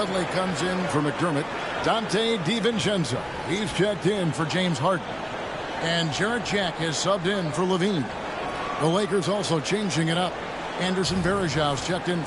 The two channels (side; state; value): both; identical; correlation 1.00